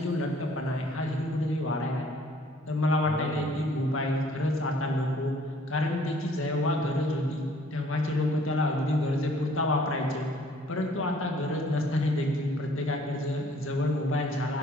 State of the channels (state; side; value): normal; both; correlation 0.58